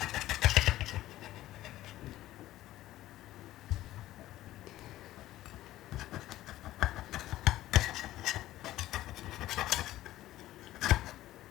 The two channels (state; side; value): quieter; right; 15.1 dB